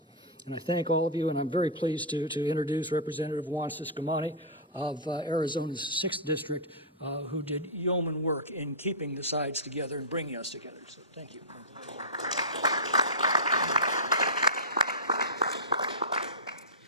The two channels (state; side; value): normal; both; correlation -0.14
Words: And I thank all of you, and I'm very pleased to introduce Representative Juan Ciscomani of Arizona's 6th District, who did yeoman work in keeping the sides together and bringing us together. So thank you.